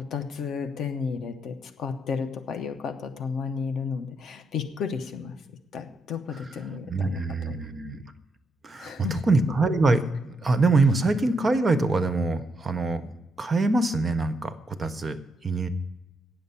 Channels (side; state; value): both; normal; correlation 0.79